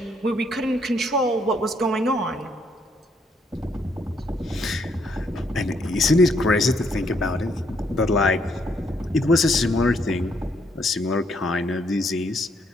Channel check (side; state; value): both; normal; correlation 0.71